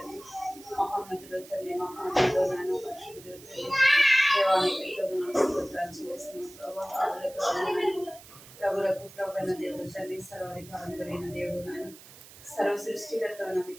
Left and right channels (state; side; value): noise; right; hiss, 19 dB below the sound